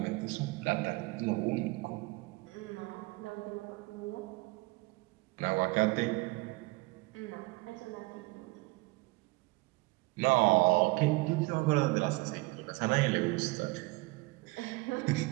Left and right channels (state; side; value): quieter; left; 23.5 dB